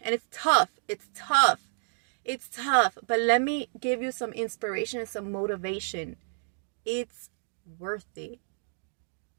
And it's tough. It's tough. It's tough. But let me give you some inspiration and some motivation. It's worth it.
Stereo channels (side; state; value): left; silent; digital silence